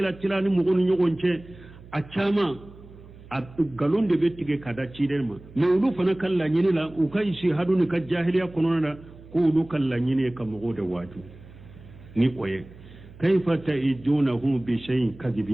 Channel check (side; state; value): right; noise; hum, 20 dB below the sound